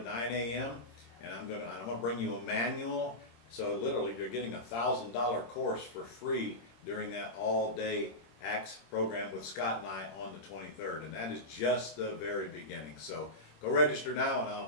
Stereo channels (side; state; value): right; late; 26 ms